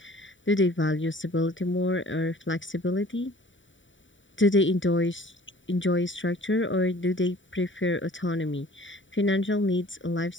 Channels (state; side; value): late; right; 0.55 ms